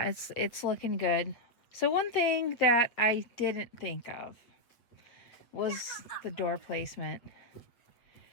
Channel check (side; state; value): right; late; 8.1 ms